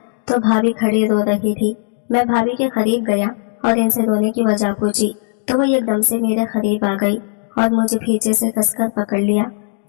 तो भाभी खड़ी रो रही थी। मैं भाभी के करीब गया और इनसे रोने की वजह पूछी तो वो एकदम से मेरे करीब आ गई और मुझे पीछे से कसकर पकड़ लिया।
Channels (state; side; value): silent; right; digital silence